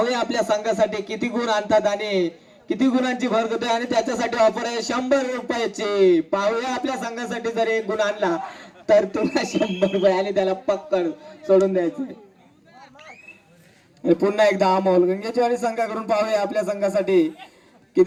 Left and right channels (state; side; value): identical; both; correlation 1.00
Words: आपल्या संघासाठी किती गुण आणतात आणि किती गुणांची भर करतोय आणि त्याच्यासाठी ऑफर आहे 100 रुपयाची पाहूया आपल्या संघासाठी जर एक गुण आणला तर तुला 100 रुपये आणि त्याला पक्कड सोडून द्यायचे पुन्हा एकदा अमोल गंगेचवाडी संघाकडून पाहूया आपल्या संघासाठी